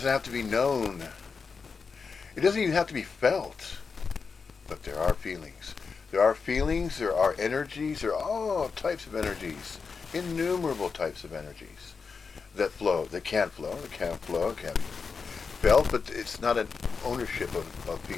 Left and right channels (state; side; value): quieter; right; 5.2 dB